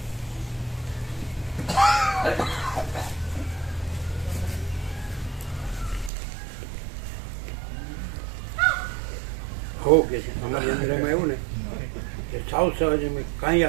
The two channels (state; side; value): drops out; left; at 6.1 s